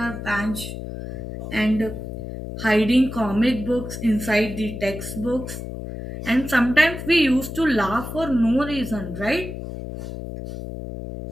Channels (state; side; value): noise; left; hum, 8 dB below the sound